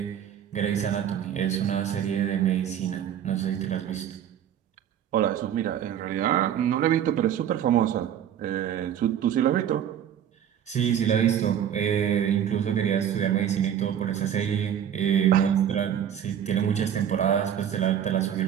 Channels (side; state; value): left; quieter; 9.6 dB